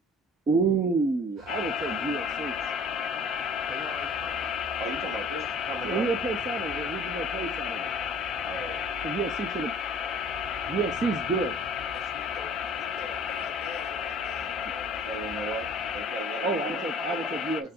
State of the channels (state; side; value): normal; both; correlation 0.49